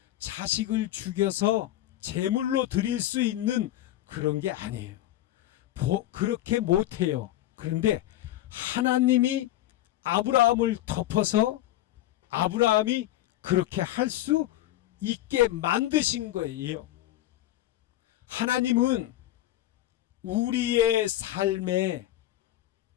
자식을 죽여서 제물로 드릴 수 있는 그런 게 아니에요. 그렇게 못해요. 그런데 하나님이 아브라함을 덮어서 아브라함이 그렇게 할 수 있게 만드신 거예요. 하나님은 우리의 삶에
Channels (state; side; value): quieter; right; 14.3 dB